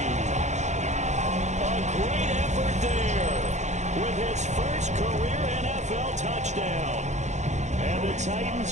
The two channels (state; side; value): late; left; 0.34 ms